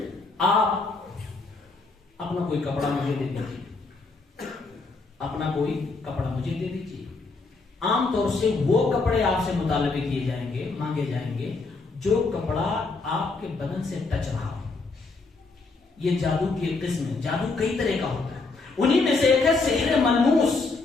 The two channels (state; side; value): quieter; right; 3.8 dB